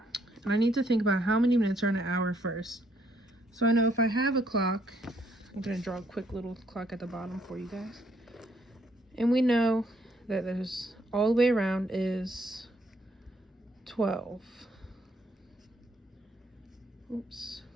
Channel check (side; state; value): both; normal; correlation 0.70